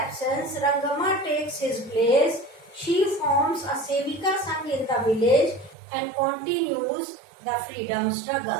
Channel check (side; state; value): left; drops out; at 5.8 s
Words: Rangama takes his place. She forms a Sevika Sangh in the village and continues the freedom